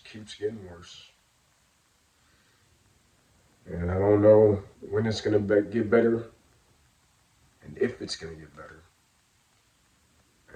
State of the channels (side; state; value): both; identical; correlation 1.00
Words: keeps getting worse. And I don't know when it's gonna get better, and if it's gonna get better.